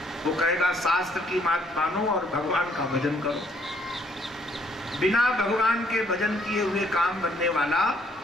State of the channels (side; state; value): both; normal; correlation 0.66